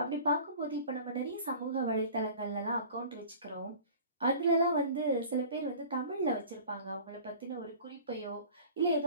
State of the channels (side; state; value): both; inverted; correlation -0.42